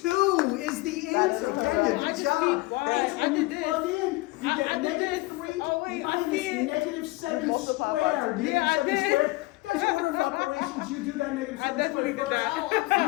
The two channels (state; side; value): quieter; right; 21.5 dB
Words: is the answer. Kenya, I good just job. see why. That's I when you did this. plug in. You I get did negative this. 3 Oh, wait, I minus see it. negative 7 Multiply squared. by- Negative Yeah, I 7 did. squared. Guys, order of operations, you do that negative I 7 definitely squared did first. that.